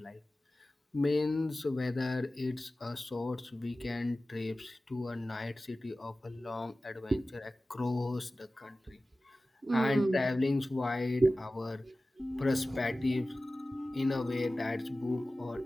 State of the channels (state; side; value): normal; both; correlation 0.96